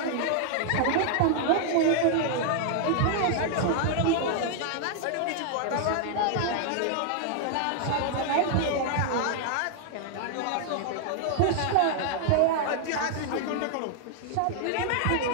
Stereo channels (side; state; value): both; different; correlation 0.00